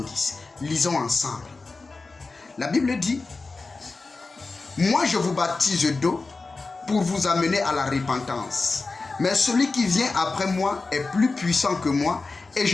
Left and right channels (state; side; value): quieter; right; 3.8 dB